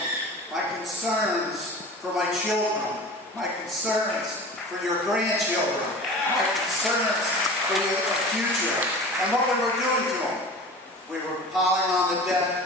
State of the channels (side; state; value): both; normal; correlation 0.37